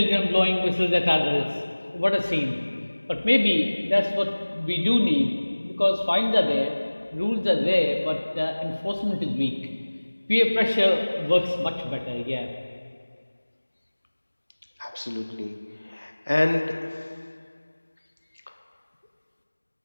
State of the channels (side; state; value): both; inverted; correlation -1.00